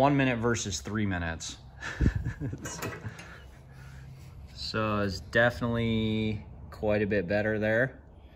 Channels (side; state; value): both; identical; correlation 1.00